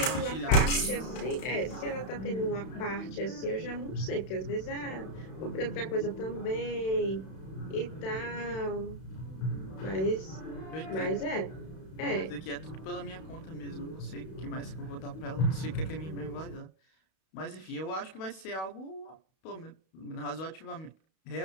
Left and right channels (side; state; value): right; late; 31 ms